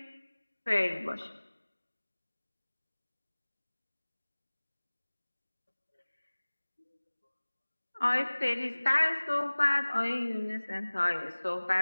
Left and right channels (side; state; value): both; inverted; correlation -1.00